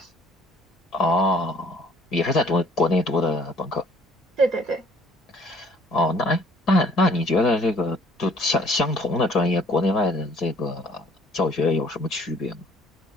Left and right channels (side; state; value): both; normal; correlation 0.58